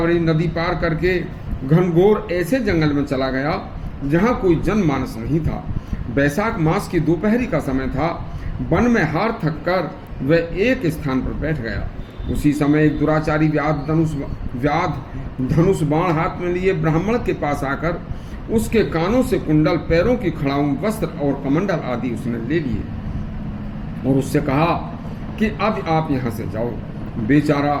नदी पार करके घनघोर ऐसे जंगल में चला गया जहाँ कोई जनमानस नहीं था। बैसाख मास की दोपहरी का समय था। वन में हार थक कर वह एक स्थान पर बैठ गया। उसी समय एक दुराचारी व्याध धनुष बाण हाथ में लिए ब्राह्मण के पास आकर उसके कानों से कुंडल, पैरों की खड़ाऊं, वस्त्र और कमंडल आदि उसने ले लिए और उससे कहा कि अब आप यहाँ से जाओ। बेचारा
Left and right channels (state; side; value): identical; both; correlation 1.00